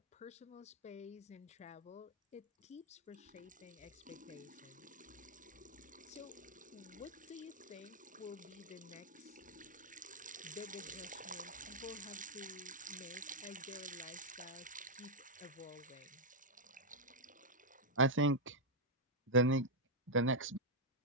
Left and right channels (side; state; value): both; normal; correlation -0.04